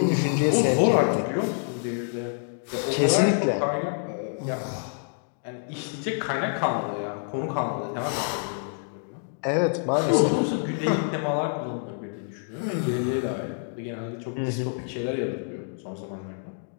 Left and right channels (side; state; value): right; silent; 60 dB below the other